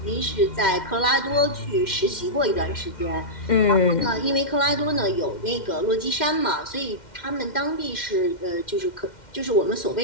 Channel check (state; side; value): late; right; 2.1 ms